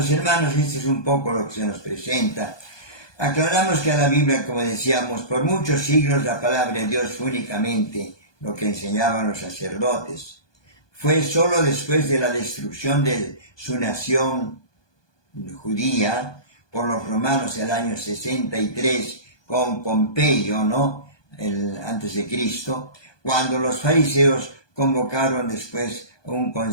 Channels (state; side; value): late; right; 1.2 ms